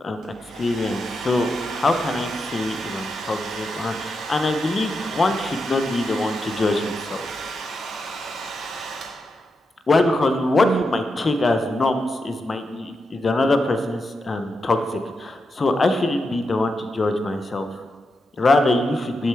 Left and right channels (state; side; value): normal; both; correlation 0.86